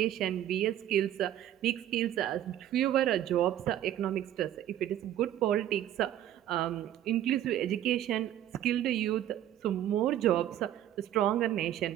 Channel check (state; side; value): quieter; left; 11.8 dB